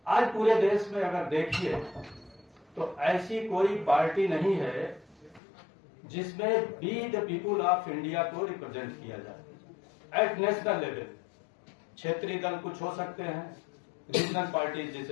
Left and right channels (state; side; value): drops out; right; at 5.4 s